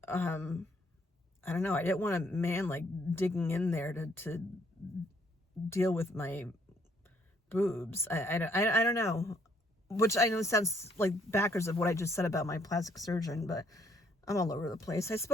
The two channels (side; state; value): both; normal; correlation 0.67